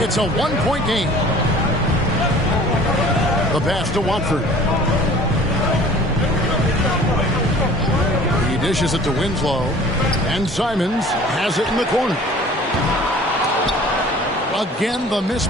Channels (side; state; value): both; normal; correlation 0.47